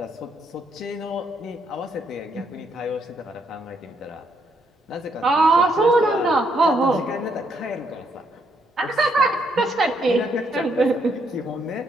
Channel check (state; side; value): normal; both; correlation 0.74